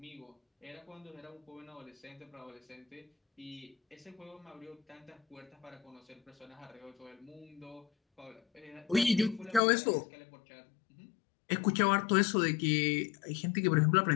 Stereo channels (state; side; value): drops out; right; at 9.6 s